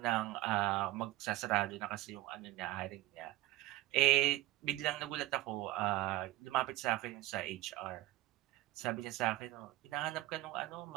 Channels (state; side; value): quieter; left; 16.8 dB